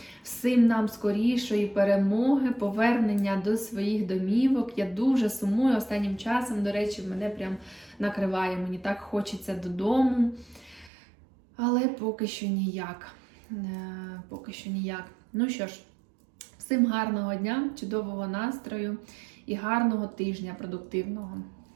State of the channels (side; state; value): left; drops out; at 10.9 s